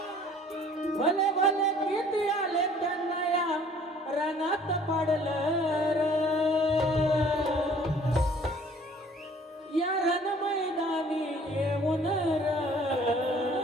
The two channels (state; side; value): normal; both; correlation 0.54